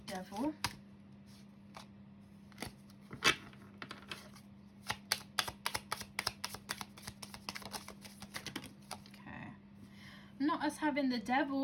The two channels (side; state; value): both; identical; correlation 1.00